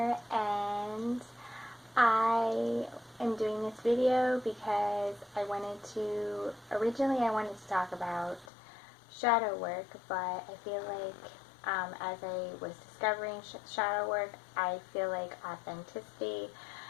and I am doing this video because originally I wanted to talk about shadow work, but I feel like as I was discovering shadow work, I feel like authenticity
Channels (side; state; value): right; drops out; at 8.5 s